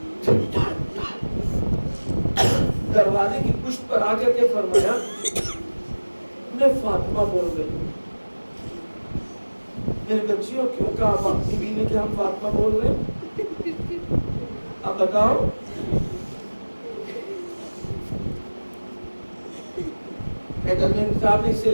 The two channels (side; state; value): both; inverted; correlation -1.00